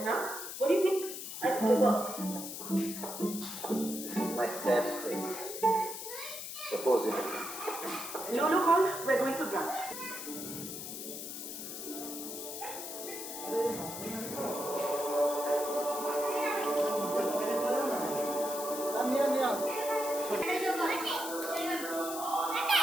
now. What do you think? I'll go work. This is my sad face. Suppose it. Lulu called. We're going for brunch.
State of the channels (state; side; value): noise; left; hiss, 8 dB below the sound